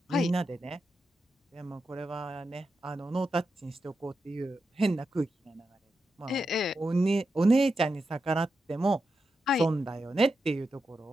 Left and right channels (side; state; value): both; normal; correlation 0.88